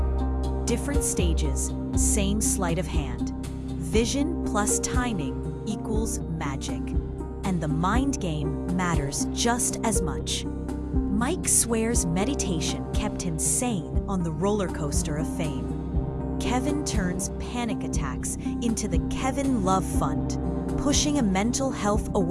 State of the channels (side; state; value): both; identical; correlation 1.00